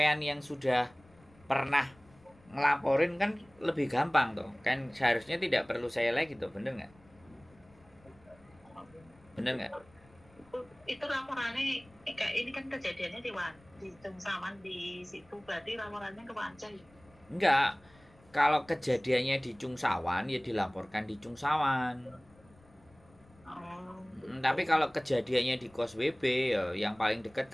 yang sudah pernah ngelaporin kan lebih gampang toh. Kan seharusnya tidak perlu saya lagi toh, bener nggak? Bener nggak? Itu laporannya kayak ini kan kejadiannya di Cungsawan di situ, berarti laporannya ke Wancai. Enggak. Kalau kejadiannya di Cungsawan ya dilaporkan di Cungsawan. Tapi kalau kejadiannya di Kos WB ya yang paling dekat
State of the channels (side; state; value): left; noise; rumble, 28 dB below the sound